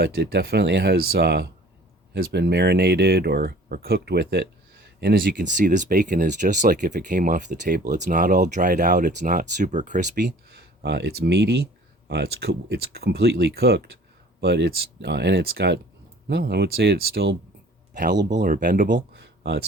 it definitely has been marinated or cooked with it. And as you can see, this bacon is just like if it came off the table. It's not all dried out. It's not super crispy. It's meaty. It's completely cooked, but it's got, no, I would say it's still palatable or bendable.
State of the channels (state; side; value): normal; both; correlation 0.50